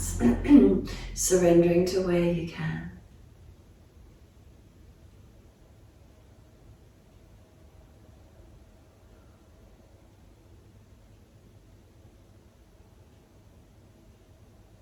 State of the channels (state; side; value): identical; both; correlation 1.00